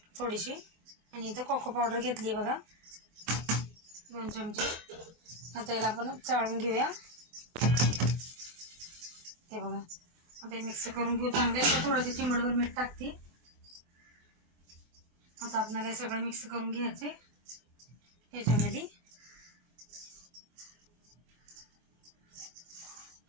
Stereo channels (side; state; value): left; late; 24 ms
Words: थोडीशी आणि इथं कोको पावडर घेतली आहे बघा 2 चमचे। आता याला आपण चाळून घेऊया। हे बघा आता मिक्स करून घेऊ चांगले। थोडंसं चिमडभर मीठ टाकते। आता आपल्याला हे सगळं मिक्स करून घ्यायचंय याच्यामध्ये।